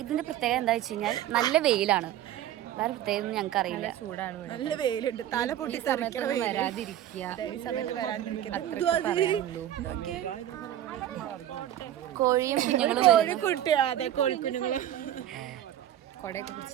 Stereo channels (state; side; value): quieter; left; 12.0 dB